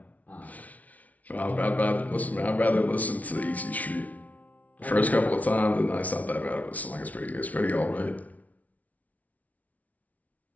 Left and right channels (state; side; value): late; right; 0.071 ms